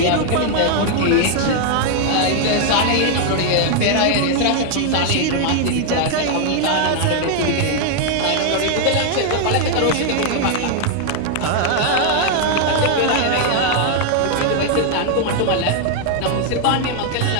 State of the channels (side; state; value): both; different; correlation 0.00